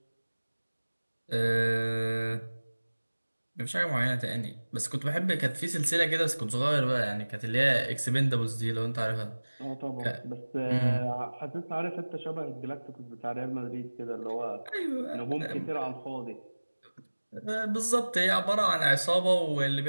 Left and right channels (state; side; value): inverted; both; correlation -1.00